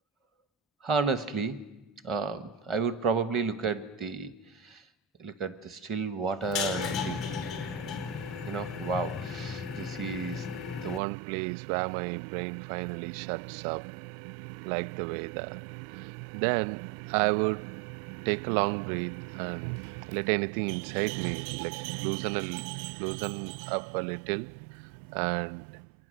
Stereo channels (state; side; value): drops out; left; at 11.0 s